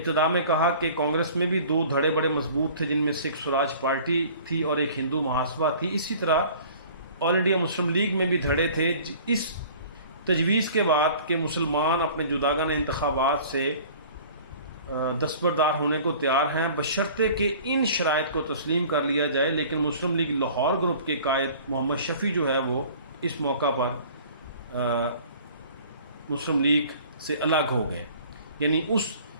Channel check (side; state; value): both; inverted; correlation -0.48